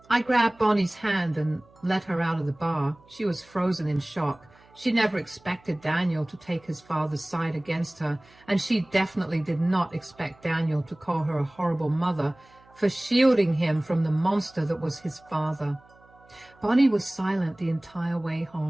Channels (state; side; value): noise; right; hum, 29 dB below the sound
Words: I grabbed Bonnie's hand and let her out of the bar. She was frozen in shock. She never expected Daniel to take his father's side against her, and she definitely did not expect Daniel to call her a horrible mother for shielding him from the monster that was his father. Bonnie was silent the entire way